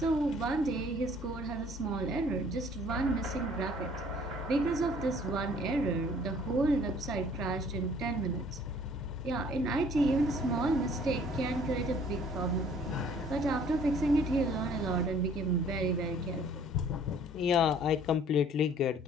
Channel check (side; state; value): both; normal; correlation 0.56